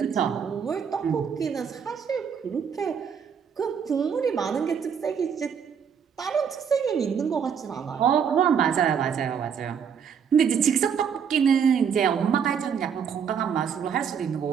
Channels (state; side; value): quieter; left; 7.2 dB